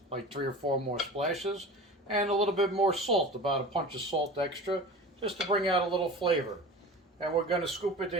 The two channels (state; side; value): normal; both; correlation 0.36